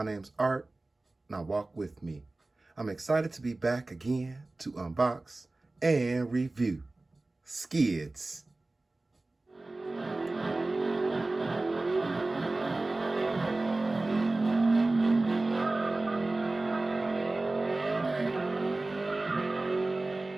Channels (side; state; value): left; quieter; 3.0 dB